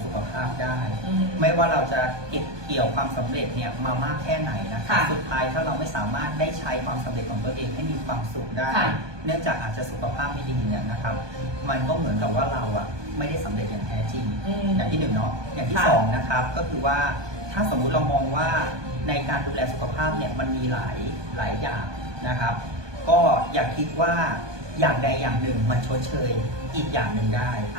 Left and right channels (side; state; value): left; late; 1.2 ms